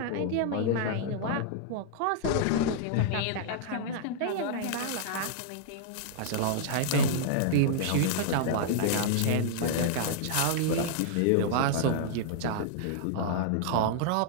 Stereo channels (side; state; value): both; different; correlation -0.01